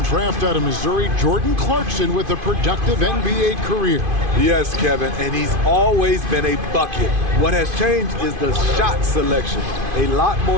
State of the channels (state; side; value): late; left; 2.5 ms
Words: draft out of Missouri, Jordan Clarkson with a productive NBA career. Yes, Kevin, and he's always been a bucket. What has changed is the shot selection. A lot